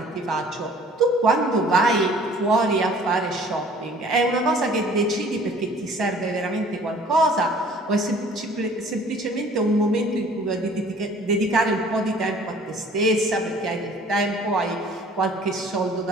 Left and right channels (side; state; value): both; normal; correlation 0.52